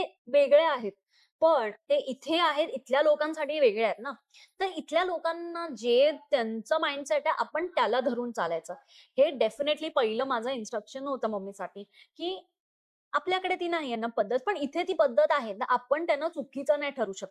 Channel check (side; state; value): both; identical; correlation 1.00